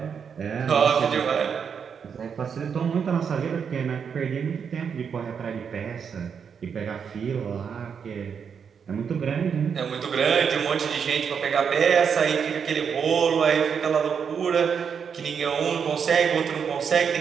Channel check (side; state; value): left; quieter; 6.8 dB